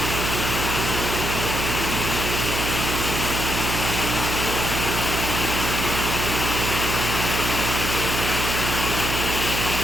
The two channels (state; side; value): noise; right; hum, 3 dB below the sound